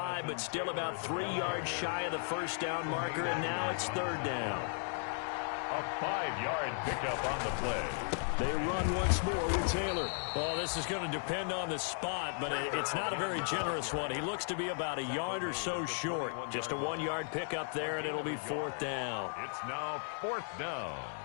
but still about 3 yards shy of the first down marker, and now it's third down. A 5-yard pickup on the play. They run once more with Taylor. Oh, this is going to depend on the spot, but it's not a very generous one. He looks to be about a yard or so short. Just a 1-yard pickup there, and it'll be fourth down. It's now fourth down.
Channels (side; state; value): right; silent; 54 dB below the other